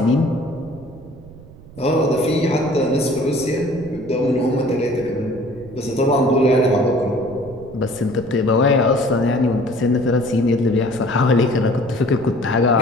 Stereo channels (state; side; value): noise; right; rumble, 20 dB below the sound